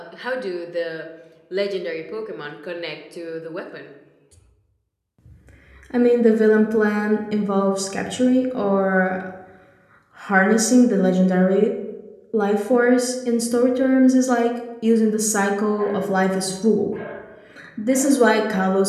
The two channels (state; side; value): identical; both; correlation 1.00